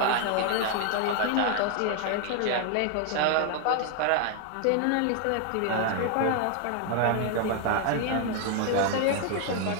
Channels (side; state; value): both; different; correlation 0.00